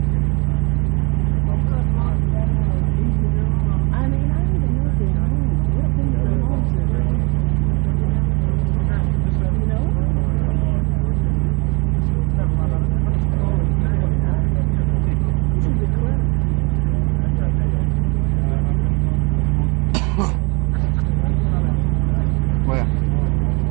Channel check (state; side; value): quieter; left; 29.9 dB